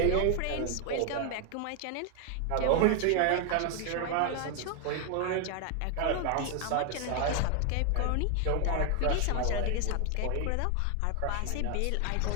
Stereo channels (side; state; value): both; different; correlation 0.00